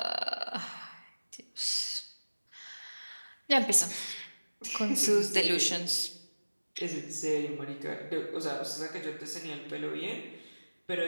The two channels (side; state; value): both; inverted; correlation -1.00